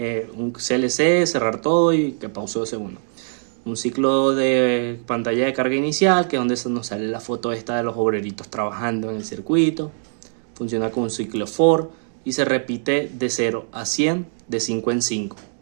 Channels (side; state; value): left; silent; digital silence